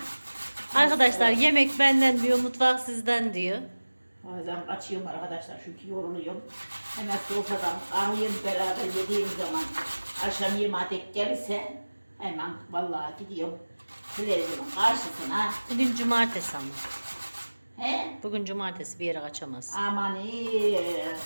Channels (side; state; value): both; inverted; correlation -1.00